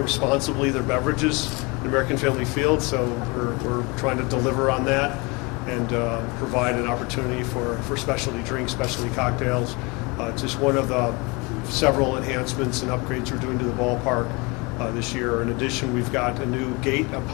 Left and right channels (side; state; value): right; quieter; 27.5 dB